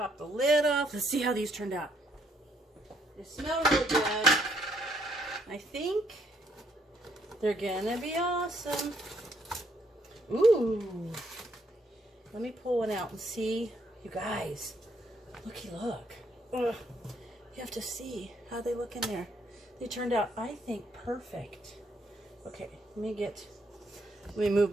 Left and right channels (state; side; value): normal; both; correlation 0.71